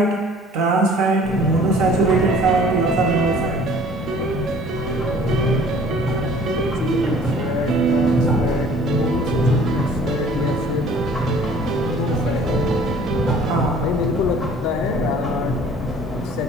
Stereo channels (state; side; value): normal; both; correlation 0.51